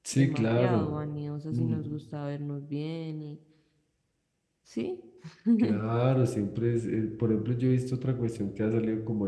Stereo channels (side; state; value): both; identical; correlation 1.00